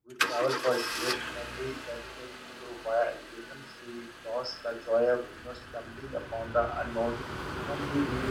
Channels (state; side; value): identical; both; correlation 1.00